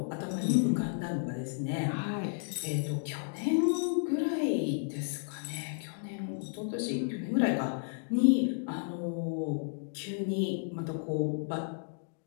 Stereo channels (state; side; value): silent; right; digital silence